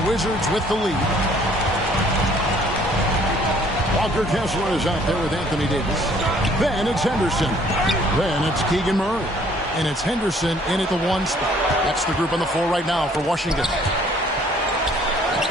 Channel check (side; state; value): both; normal; correlation 0.59